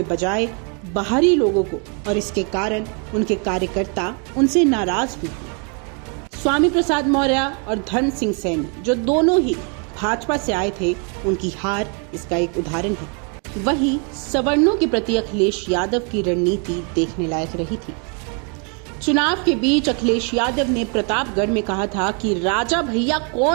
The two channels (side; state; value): left; quieter; 37.5 dB